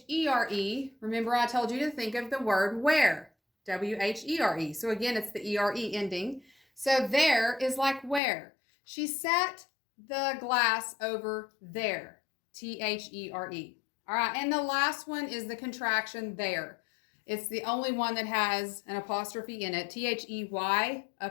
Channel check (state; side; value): drops out; right; at 8.2 s